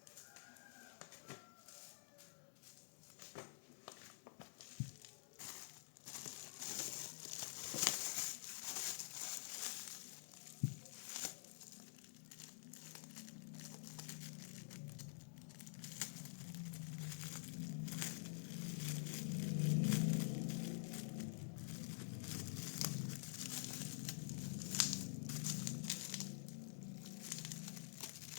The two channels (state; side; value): silent; right; digital silence